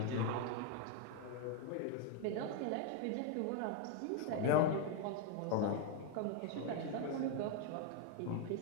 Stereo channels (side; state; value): both; different; correlation 0.01